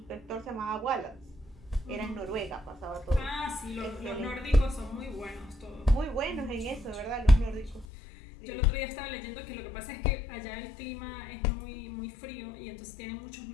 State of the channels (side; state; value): right; drops out; at 7.9 s